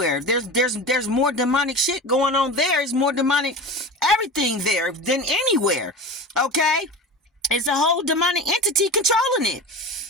There's more demonic shit going on there. There's more demonic everything there than anywhere. Okay, it's a whole demonic entity controlling it.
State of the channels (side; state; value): both; normal; correlation 0.31